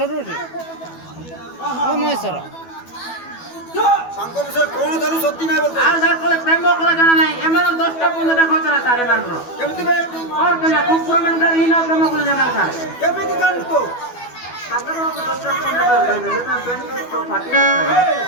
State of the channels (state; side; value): late; right; 12 ms